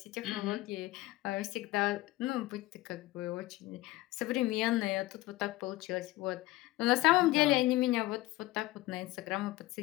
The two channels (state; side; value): quieter; right; 18.2 dB